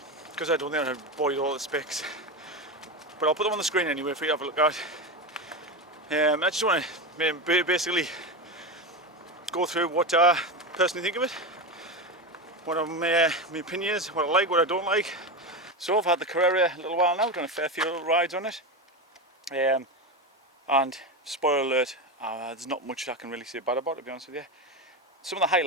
because I don't think I'll bore you with all the specs. But I'll put them on the screen anyway for you to have a look at. I just want to basically go through what I personally think of it, what my opinion is, what I like, what I don't like. So I've had the Carrera a little while now, done a fair few little rides on it, and spoiler alert, there's not much I can really say bad about it, to be honest with you. Some of the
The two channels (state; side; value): normal; both; correlation 0.17